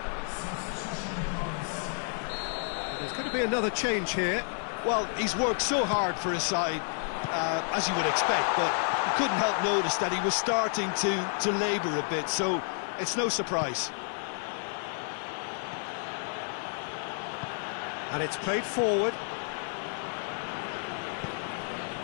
There's going to be another change here. Well, he's worked so hard for his side, as you would expect, but you couldn't help notice that he was starting to labour a bit, so it's no surprise. And it's played forward.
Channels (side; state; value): right; silent; 57 dB below the other